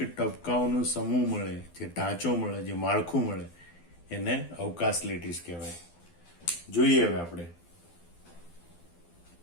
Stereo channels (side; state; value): right; late; 12 ms